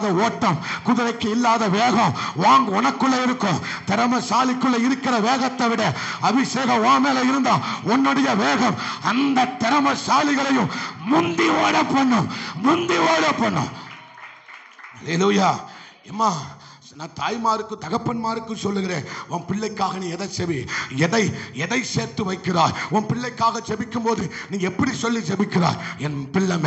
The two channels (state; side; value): identical; both; correlation 1.00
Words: ஓட்டம், குதிரைக்கு இல்லாத வேகம் உனக்குள்ள இருக்கும். திறமைசாலிக்குள்ள இருக்கிற வேகத்தை விட அபிஷேகம் உன் மேல இருந்தா உன்னுடைய வேகம் அந்த திறமைசாலிகளையும் முந்தி ஓட பண்ணும், முந்தி ஓட பண்ணும். அல்லேலூயா. அம்மா, நான் தாய்மாருக்கு தகப்பன்மாருக்கு சொல்லுகிறேன், உன் பிள்ளைக்காக நீ எதை செவி, எதை சேர்த்து வைக்கிறாய்? உன் பிள்ளைக்காக ஜெபிக்கும் போது நீ எப்படி சொல்லி ஜெபிக்கிறாய்? என் பிள்ளை